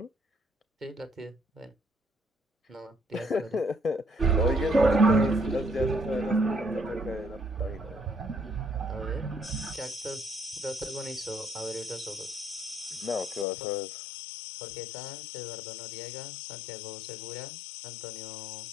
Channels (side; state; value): right; drops out; at 13.5 s